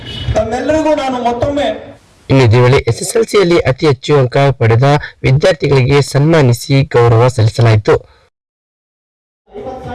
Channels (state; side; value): identical; both; correlation 1.00